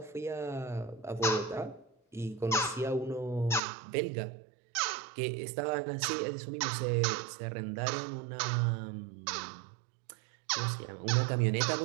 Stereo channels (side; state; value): left; drops out; at 3.6 s